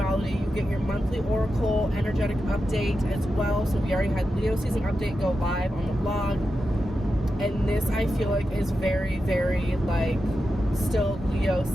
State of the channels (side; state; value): both; normal; correlation 0.90